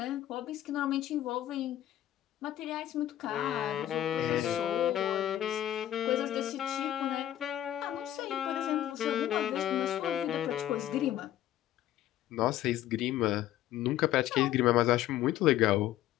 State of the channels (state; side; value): quieter; right; 12.6 dB